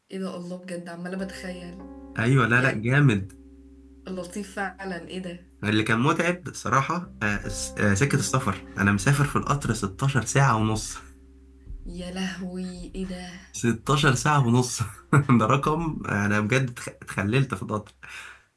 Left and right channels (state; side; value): identical; both; correlation 1.00